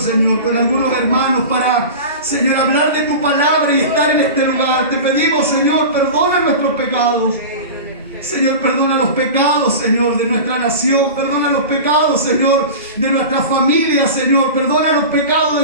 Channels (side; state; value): both; inverted; correlation -0.30